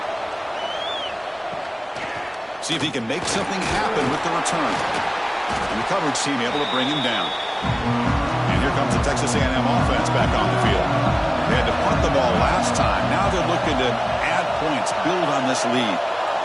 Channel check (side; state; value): both; identical; correlation 1.00